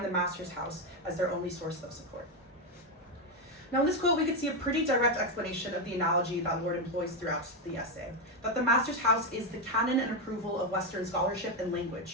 the master's house as their only source of support." Now, in this quote, we could see a pretty direct explanation of the analogy that Lorde employs throughout the essay, that the master's house is the canon and approval of Western scholarship and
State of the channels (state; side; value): normal; both; correlation 0.07